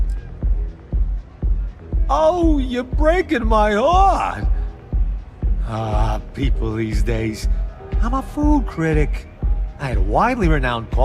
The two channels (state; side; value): identical; both; correlation 1.00